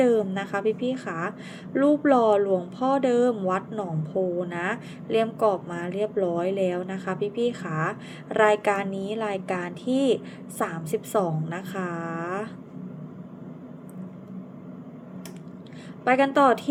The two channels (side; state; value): both; identical; correlation 1.00